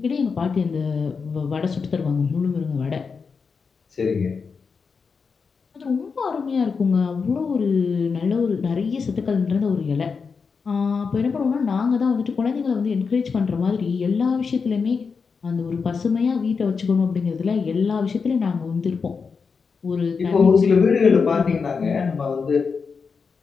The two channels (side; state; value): right; quieter; 5.3 dB